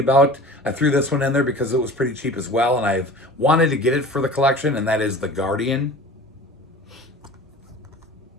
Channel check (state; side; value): normal; both; correlation 0.40